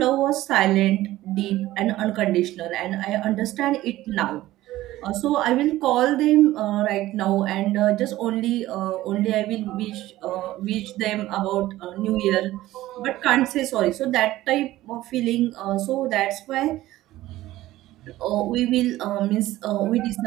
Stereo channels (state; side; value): quieter; left; 15.9 dB